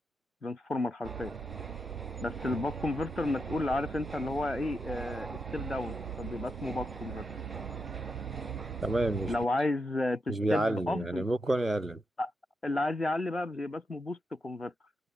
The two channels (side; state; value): both; normal; correlation 0.84